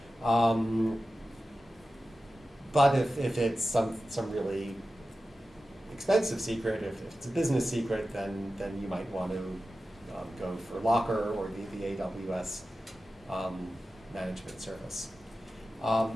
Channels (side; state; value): both; normal; correlation 0.93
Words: But if it's some really expensive secret, if it's a business secret, then you might want to go for Locker or the AWS management service.